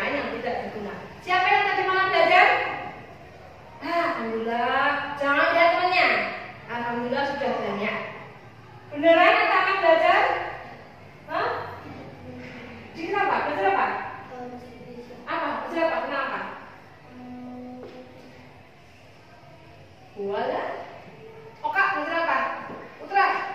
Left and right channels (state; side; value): identical; both; correlation 1.00